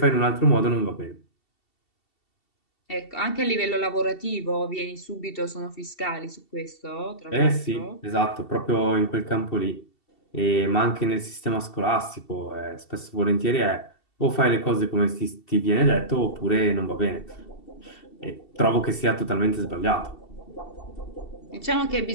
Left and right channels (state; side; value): late; right; 2.7 ms